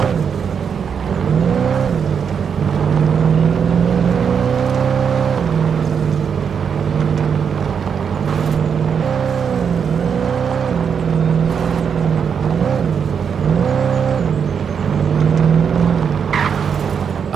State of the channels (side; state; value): left; quieter; 7.0 dB